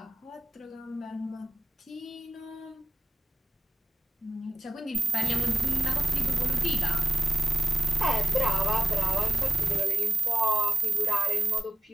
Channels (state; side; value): normal; both; correlation 0.89